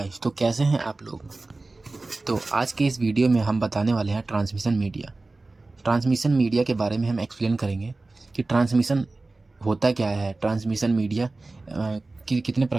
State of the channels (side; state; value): left; quieter; 3.2 dB